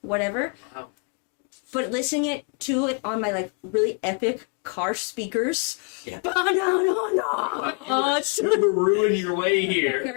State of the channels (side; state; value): right; quieter; 39.8 dB